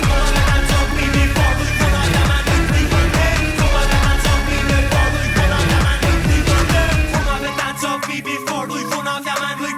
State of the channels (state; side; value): identical; both; correlation 1.00